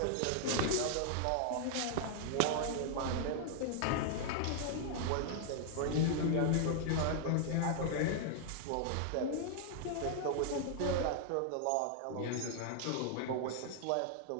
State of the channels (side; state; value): both; different; correlation -0.01